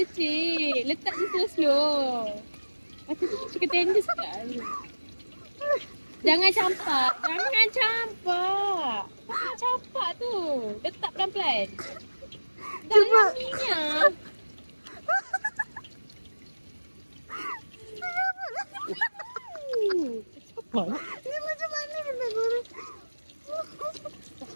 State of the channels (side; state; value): both; inverted; correlation -1.00